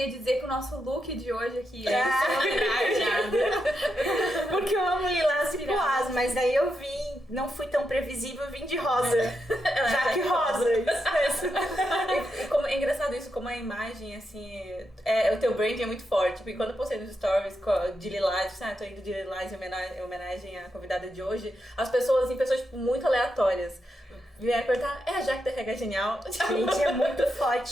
de dizer que o nosso look de hoje aqui é porque eu amo lilás e poás, mas daí eu vim, não fui tão previsível, eu vim de rosa. Jaque rosa. É engraçado isso, como a imagem, assim, o teu brand é muito forte. Porque quando eu postei nos stories de lilás, tô indo de lilás em homenagem à convidada de hoje, as pessoas, tipo, muito aleatórias, vieram perguntar, é a Jaque da RH Genial? Gente, é muito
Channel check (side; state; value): both; normal; correlation 0.84